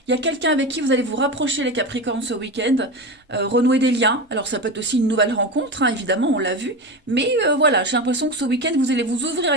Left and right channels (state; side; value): normal; both; correlation 0.22